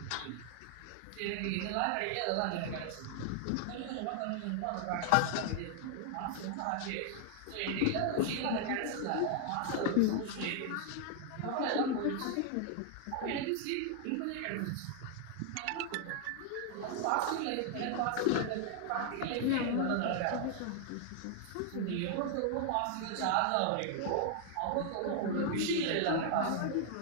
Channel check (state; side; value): different; both; correlation 0.00